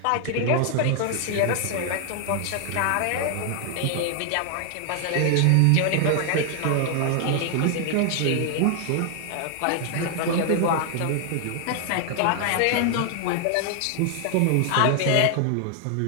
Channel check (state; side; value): different; both; correlation 0.00